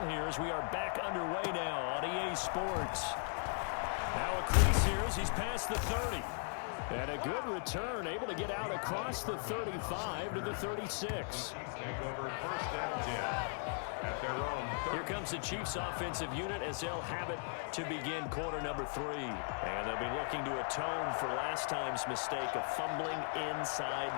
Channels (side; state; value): right; silent; 53 dB below the other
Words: here as we are back underway now on EA Sports. Now a crease here as he's past the 30. And a good return, able to get out across the 35 to the 36. Take over first and 10 at their own 30. Here comes the Chiefs offensive unit as they'll have it to begin quarter number 3. And they'll be looking to atone for last time's mistake of fumbling